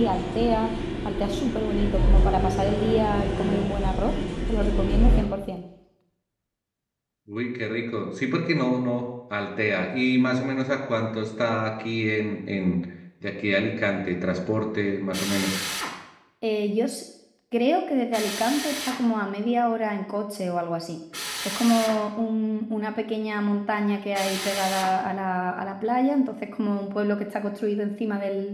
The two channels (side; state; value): both; identical; correlation 1.00